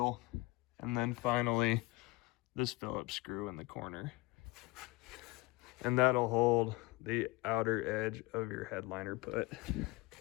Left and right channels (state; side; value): quieter; right; 22.6 dB